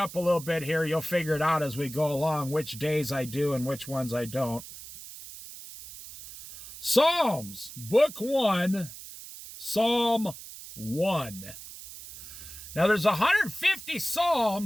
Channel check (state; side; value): noise; right; hiss, 14 dB below the sound